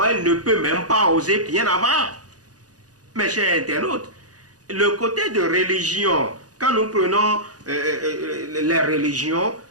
elle ne peut même pas oser bien avant. Mes chers internautes, le côté de religion, quand nous prenons les religions,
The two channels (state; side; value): late; left; 0.68 ms